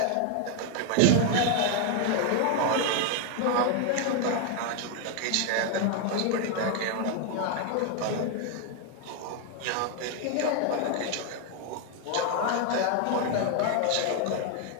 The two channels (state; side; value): different; both; correlation 0.01